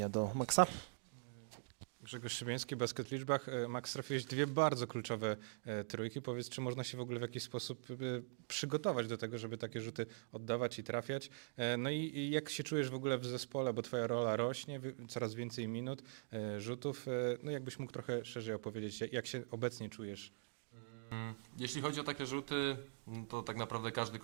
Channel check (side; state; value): left; silent; digital silence